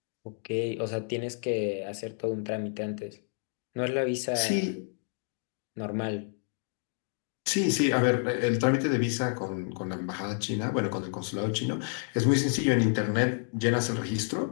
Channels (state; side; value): silent; right; 58 dB below the other